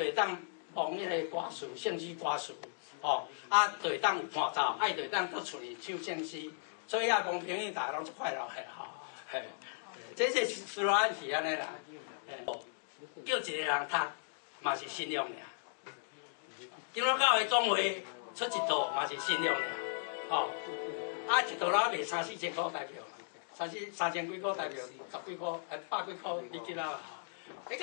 会当望迄个歌词，圣诗歌词，哦，啊，就会当有伴奏，啊，就会当到厝里唱圣诗。所以遐讲朋友大家拢足快乐的吼，嘿，这是斯罗安是安尼啦，叫一个人读嘛是信用尔，今仔教会总会出一套嘛是信用尔，吼，啊一套啦卖3、4千块台票，3千几块台票，10几块，100几块你记啦，你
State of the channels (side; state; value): right; silent; digital silence